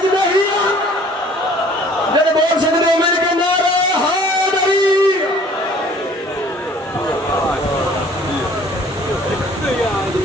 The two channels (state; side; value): normal; both; correlation 0.53